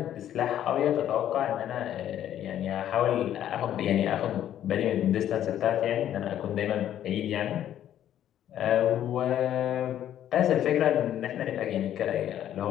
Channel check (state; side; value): quieter; right; 11.1 dB